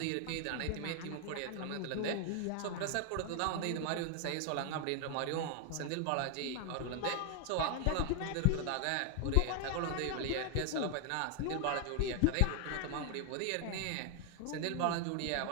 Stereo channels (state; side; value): different; both; correlation 0.00